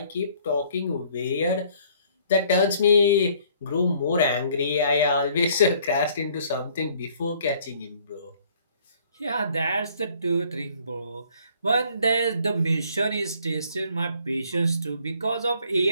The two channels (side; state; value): both; inverted; correlation -0.60